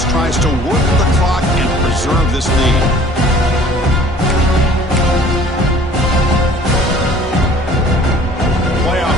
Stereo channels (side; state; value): both; normal; correlation 0.51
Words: tries to work the clock and preserve this lead. Playoff